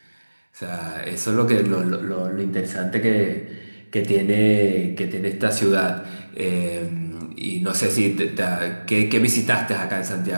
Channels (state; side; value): inverted; both; correlation -1.00